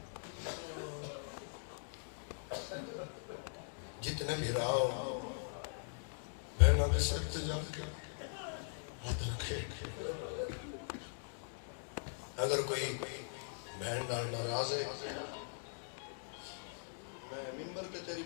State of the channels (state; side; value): silent; right; digital silence